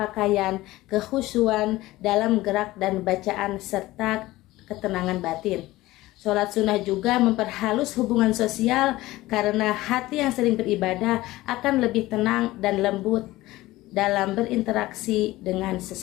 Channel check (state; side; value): quieter; right; 17.9 dB